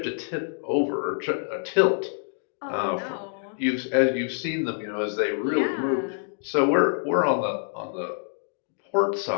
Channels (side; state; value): right; silent; digital silence